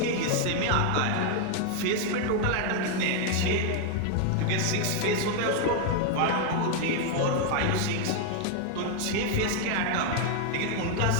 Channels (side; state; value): both; different; correlation 0.01